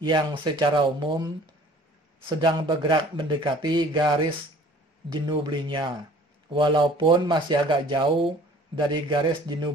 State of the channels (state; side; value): normal; both; correlation 0.51